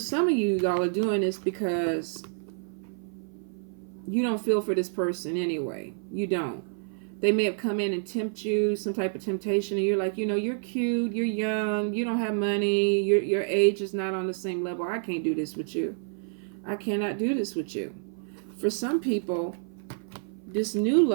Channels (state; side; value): silent; left; 55 dB below the other